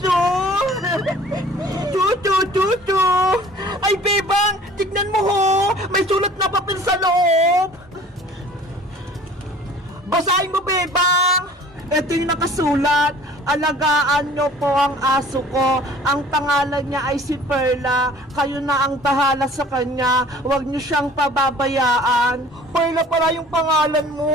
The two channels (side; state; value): both; normal; correlation 0.49